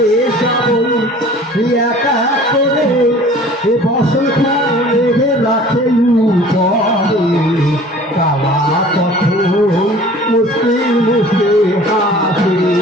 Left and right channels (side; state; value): both; normal; correlation 0.47